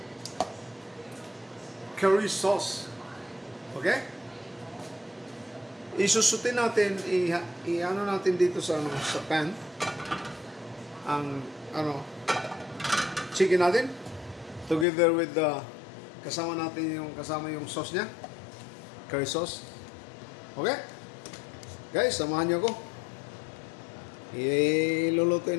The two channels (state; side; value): drops out; right; at 14.9 s